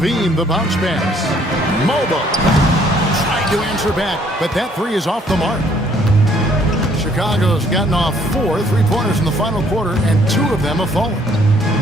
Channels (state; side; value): normal; both; correlation 0.63